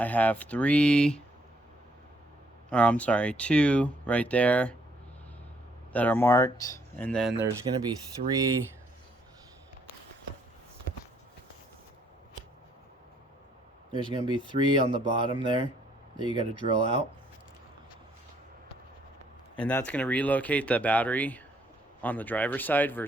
have two right there that are marked, and then there's gonna be three on the bottom there that you got to drill out, and that's gonna relocate the battery on the driver's side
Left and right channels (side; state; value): both; normal; correlation 0.68